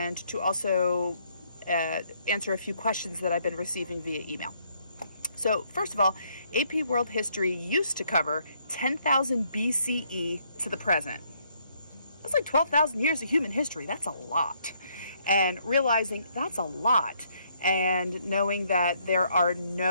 to also answer a few questions that I've been receiving via email. So first of all, AP World History used to cover 10,000 BCE to the present. That's like 12,000 years of human history. That's a lot. And realizing that's a lot, and knowing that there are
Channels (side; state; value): both; inverted; correlation -0.70